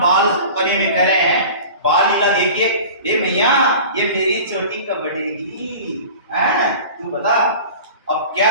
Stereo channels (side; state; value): both; inverted; correlation -0.39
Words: परी में कह रहे हैं, बाल लीला देखिए, ये मैया ये मेरी चोटी कब बढ़ेगी, तू बता। अब क्या